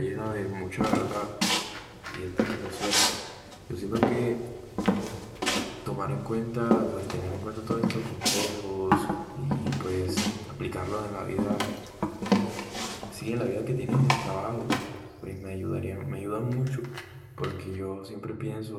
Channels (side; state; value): both; identical; correlation 1.00